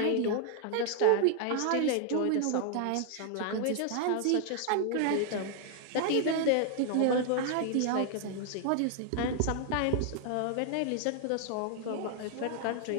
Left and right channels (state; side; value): different; both; correlation 0.00